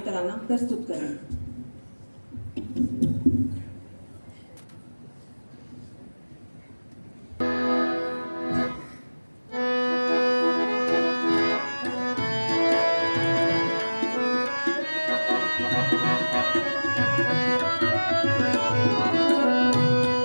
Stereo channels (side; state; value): both; inverted; correlation -1.00